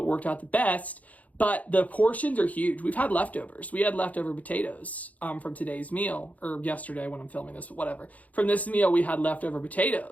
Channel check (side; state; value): right; late; 0.073 ms